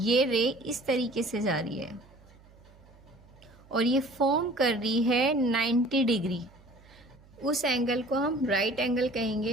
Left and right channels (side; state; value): right; noise; hum, 25 dB below the sound